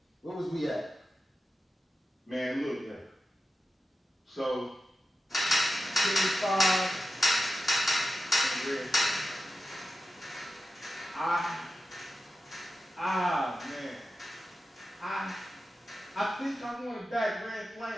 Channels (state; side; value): normal; both; correlation 0.91